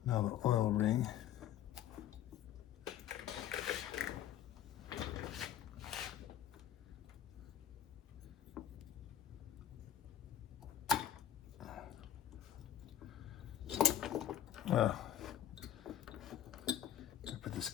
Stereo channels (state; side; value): quieter; right; 10.6 dB